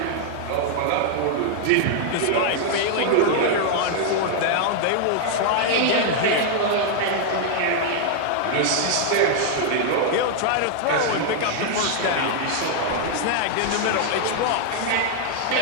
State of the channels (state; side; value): different; both; correlation 0.00